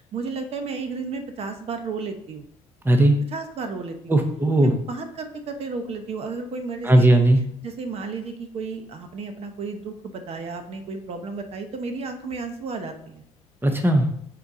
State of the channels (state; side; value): normal; both; correlation 0.81